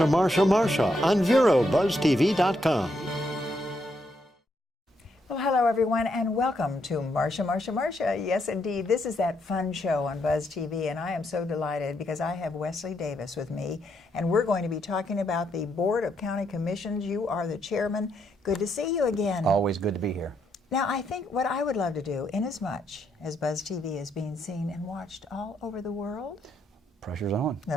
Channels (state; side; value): normal; both; correlation 0.77